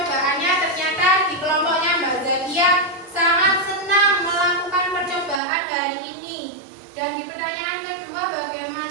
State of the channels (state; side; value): drops out; left; at 5.4 s